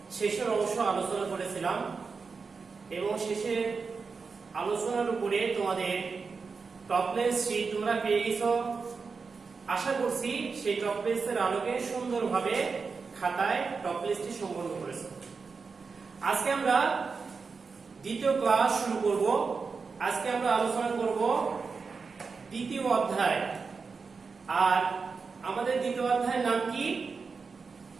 শেষের অংশ আলোচনা করেছিলাম এবং শেষের আলোচনার উপরে তোমাদের টপলেস শীট তোমরা পেয়ে গেছো। আশা করছি সেই টপলেসের আলোকে সুন্দরভাবে খাতায় টপলেসটি সম্পন্ন করেছো। আজকে আমরা দ্বিতীয় ক্লাস শুরু করব। আজকে আমরা আলোচনা করব দ্বিতীয় অধ্যায়। আর আমাদের দ্বিতীয় অধ্যায়ের নাম কি?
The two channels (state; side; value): quieter; left; 4.9 dB